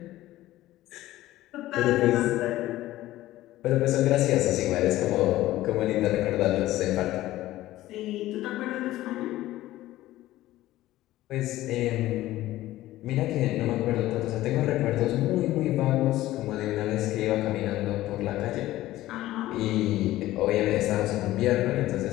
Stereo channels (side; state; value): right; quieter; 15.7 dB